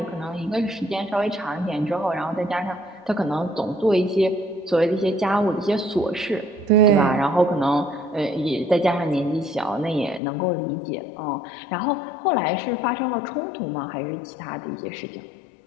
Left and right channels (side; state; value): right; drops out; at 10.2 s